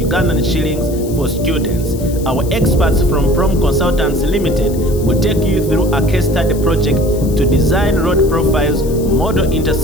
shillings for students. Our experts from Prom Consultants Limited will take you through a case study project to design road profiles, model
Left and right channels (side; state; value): left; noise; hiss, 17 dB below the sound